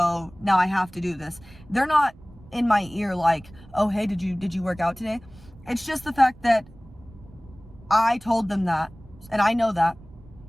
now I have to do this. They're not in my ear like, oh hey, did you work out today? It's just the fact that I told them that and I know that,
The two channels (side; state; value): right; noise; rumble, 22 dB below the sound